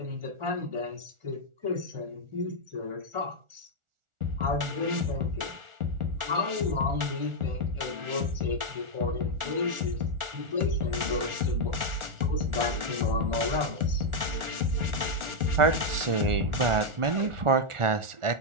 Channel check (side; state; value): left; late; 1.4 ms